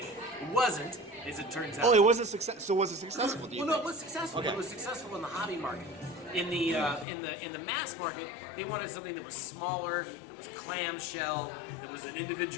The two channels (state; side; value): drops out; right; at 7.1 s